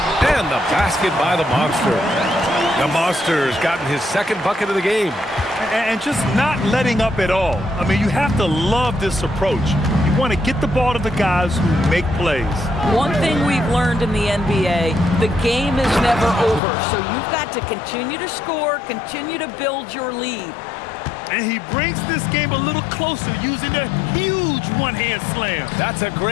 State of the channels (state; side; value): drops out; right; at 16.6 s